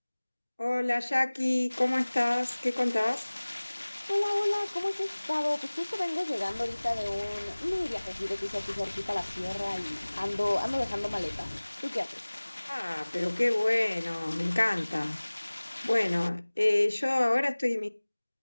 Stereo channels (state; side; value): inverted; both; correlation -1.00